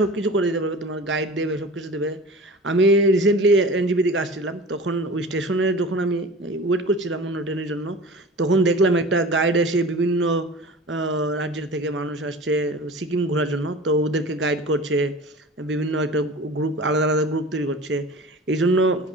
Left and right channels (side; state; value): both; normal; correlation 0.37